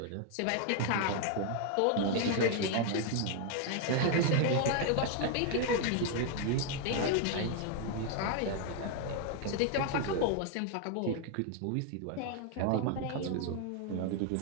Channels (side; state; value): both; different; correlation 0.01